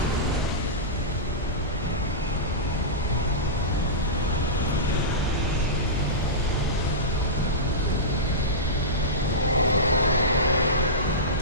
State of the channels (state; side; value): normal; both; correlation -0.16